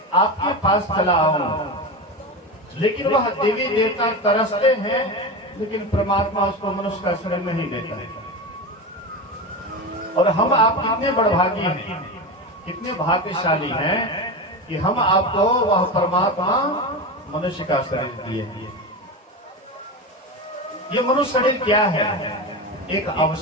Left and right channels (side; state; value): both; normal; correlation 0.22